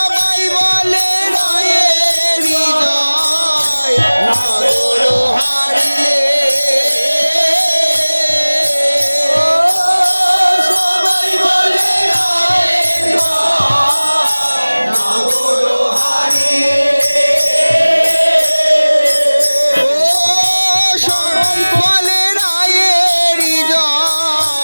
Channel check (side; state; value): both; inverted; correlation -1.00